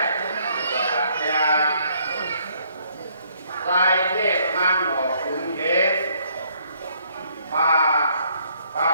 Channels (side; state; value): both; inverted; correlation -0.67